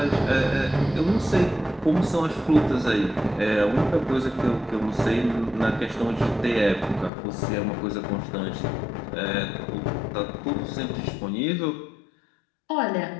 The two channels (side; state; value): right; drops out; at 7.1 s